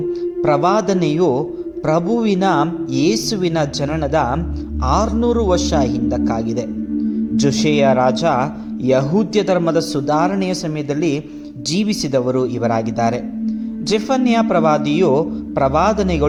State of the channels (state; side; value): identical; both; correlation 1.00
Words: ಪ್ರವಾದನೆಯು ಪ್ರಭುವಿನ ಯೇಸುವಿನ ಜನನದ 600 ವರ್ಷ ಹಿಂದಕ್ಕಾಗಿದೆ. ಜೋಶೆಯ ರಾಜ ಯಹೂದ್ಯ ಧರ್ಮದ ಸುಧಾರಣೆಯ ಸಮಯದಲ್ಲಿ ಜೀವಿಸಿದವರು ಇವರಾಗಿದ್ದಾರೆ. ಜೆಫನ್ಯ